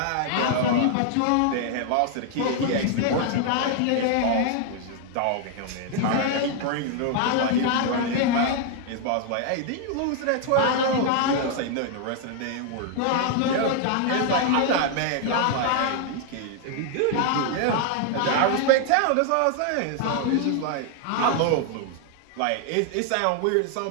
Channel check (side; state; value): both; different; correlation 0.00